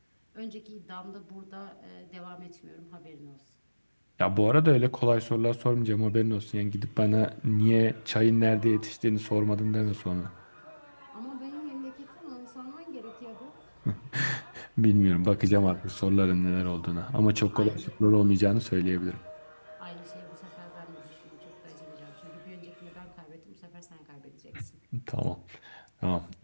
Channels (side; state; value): both; inverted; correlation -1.00